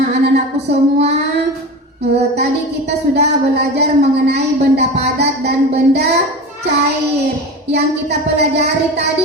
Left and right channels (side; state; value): both; normal; correlation 0.29